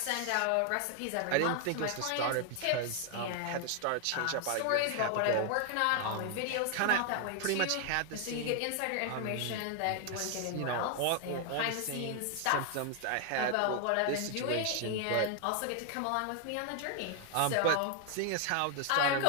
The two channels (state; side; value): different; both; correlation 0.00